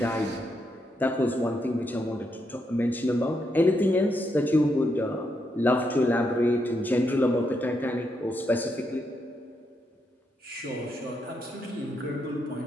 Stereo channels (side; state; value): both; normal; correlation 0.80